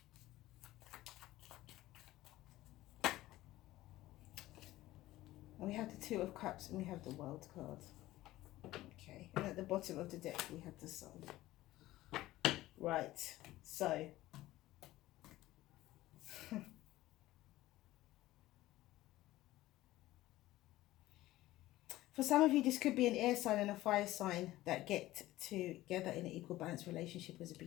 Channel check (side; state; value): right; quieter; 16.4 dB